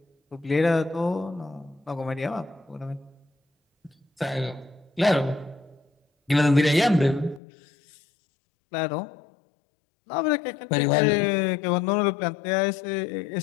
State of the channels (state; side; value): drops out; right; at 7.4 s